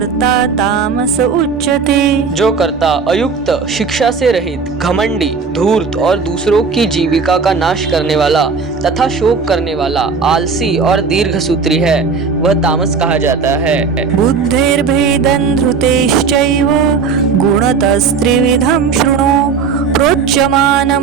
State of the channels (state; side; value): quieter; left; 5.3 dB